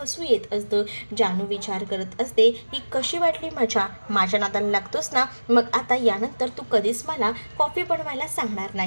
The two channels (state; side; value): inverted; both; correlation -1.00